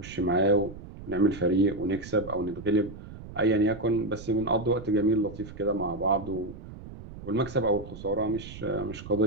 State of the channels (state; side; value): noise; right; rumble, 14 dB below the sound